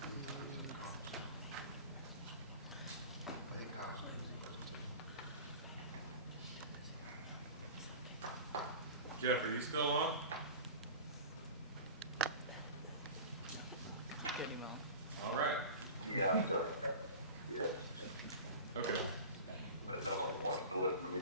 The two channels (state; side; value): inverted; both; correlation -0.35